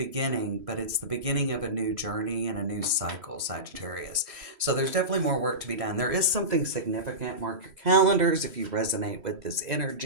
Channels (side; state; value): left; late; 3.1 ms